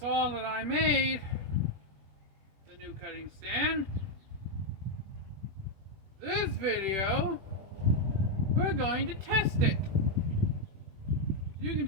that I made the new cutting stand. This video, we're going to test it. You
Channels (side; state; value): left; late; 21 ms